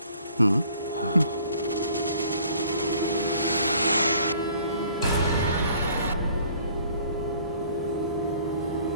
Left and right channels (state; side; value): inverted; both; correlation -0.56